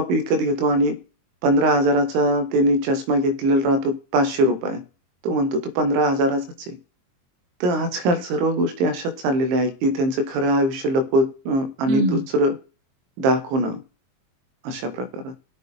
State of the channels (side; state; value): left; late; 23 ms